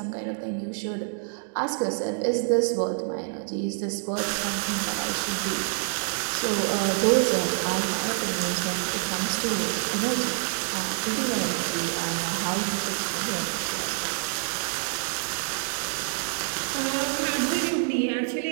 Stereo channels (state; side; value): silent; left; 60 dB below the other